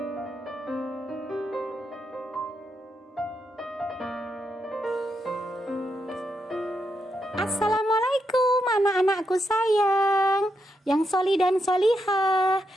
anak-anakku sayang, yang soli dan solihah.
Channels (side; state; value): both; normal; correlation 0.82